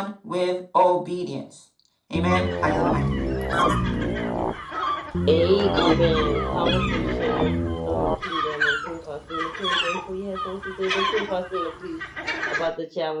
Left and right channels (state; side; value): identical; both; correlation 1.00